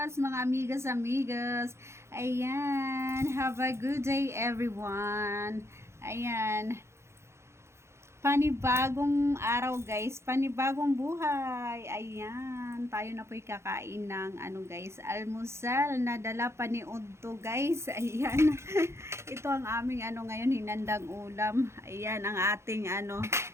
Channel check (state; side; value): late; left; 0.13 ms